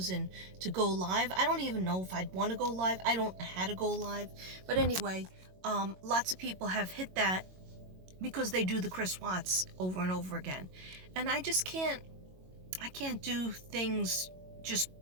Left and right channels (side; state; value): left; late; 22 ms